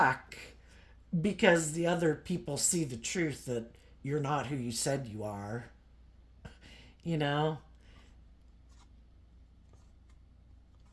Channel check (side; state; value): both; identical; correlation 1.00